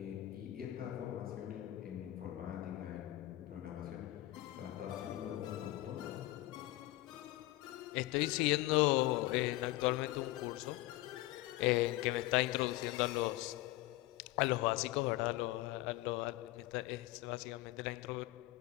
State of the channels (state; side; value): quieter; right; 17.8 dB